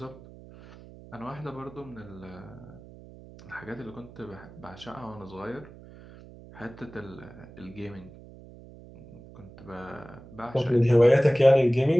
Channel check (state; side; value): noise; right; hum, 19 dB below the sound